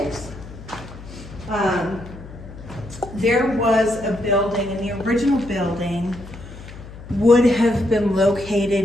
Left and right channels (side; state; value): left; noise; hum, 15 dB below the sound